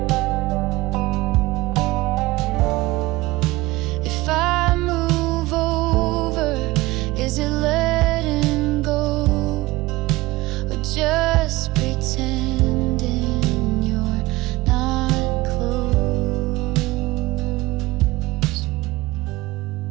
If I move over, is it letting go, or just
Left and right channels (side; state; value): left; quieter; 19.7 dB